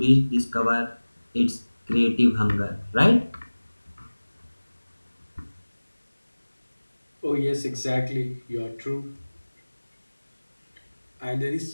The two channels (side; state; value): both; inverted; correlation -1.00